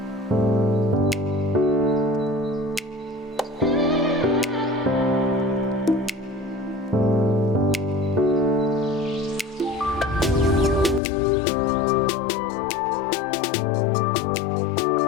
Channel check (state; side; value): drops out; right; at 11.0 s